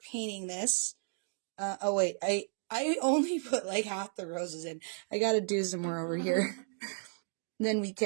painting this. Oh wait, I only put like half the roses in. I gotta do some more over here. Then we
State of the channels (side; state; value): left; silent; digital silence